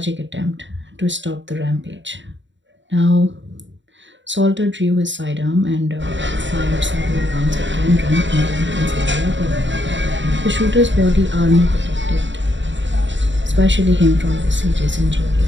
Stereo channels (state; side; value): late; left; 0.54 ms